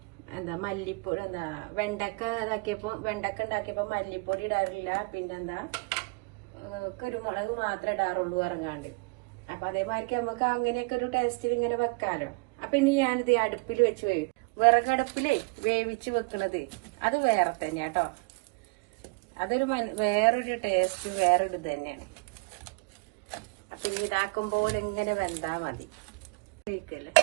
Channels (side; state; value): left; quieter; 30.2 dB